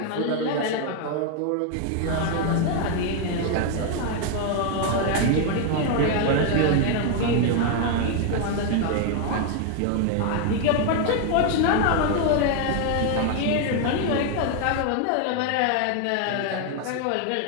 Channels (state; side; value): different; both; correlation 0.01